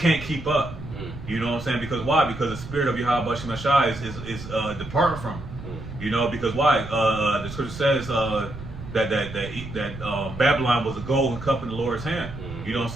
keep up. You know what I'm saying? Because why? Because the spirit of Yahweh Bashem Ashai is departing from him. You know, because why? The scripture says that Babylon was a golden cup in the Lord's hand. You know what I'm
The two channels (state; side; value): noise; right; rumble, 12 dB below the sound